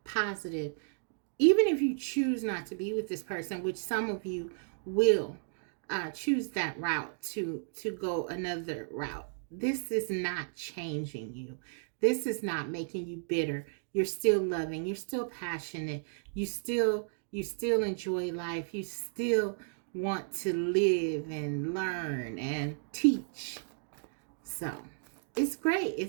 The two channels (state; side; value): silent; left; digital silence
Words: positive. Even if you choose not to be with this person, which some of you will choose that route to go another route. This is not changing you. This is not making you bitter. You're still loving. You're still passionate. You still enjoy life. You still want to live and learn and teach. So it's great.